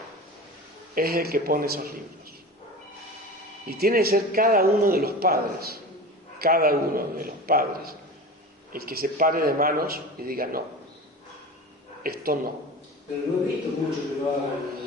es el que pone esos libros. Y tiene que ser cada uno de los padres, el que se pare de manos y diga no, esto no. Pero no he visto mucho que lo hagan.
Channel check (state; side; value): normal; both; correlation 0.32